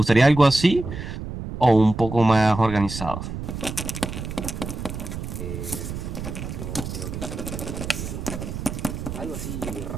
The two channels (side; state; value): right; noise; rumble, 7 dB below the sound